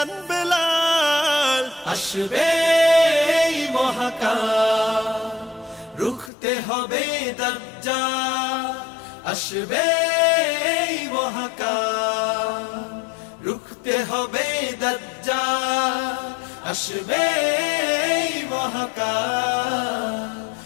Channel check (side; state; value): right; drops out; at 6.3 s